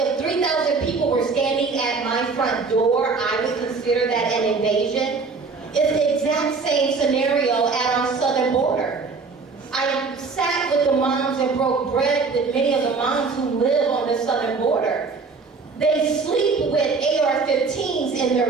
3,000 people were standing at my front door, I would consider that an invasion. It's the exact same scenario at our southern border. I sat with the moms and broke bread with many of the moms who live on the southern border. They sleep with AR-15s in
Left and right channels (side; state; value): left; quieter; 4.5 dB